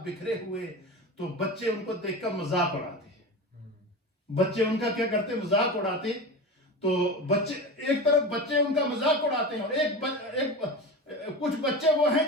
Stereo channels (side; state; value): both; normal; correlation 0.27